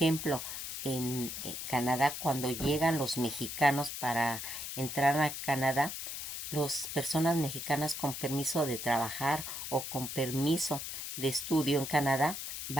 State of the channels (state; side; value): noise; left; hiss, 6 dB below the sound